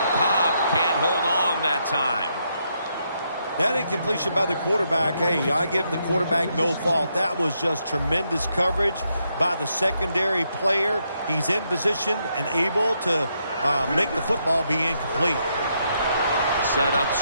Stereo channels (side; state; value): both; inverted; correlation -0.78